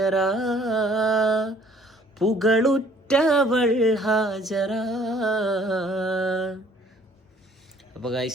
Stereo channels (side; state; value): both; normal; correlation 0.57